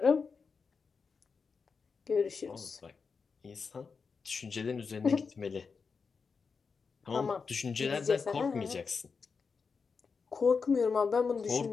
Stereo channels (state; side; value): quieter; right; 5.2 dB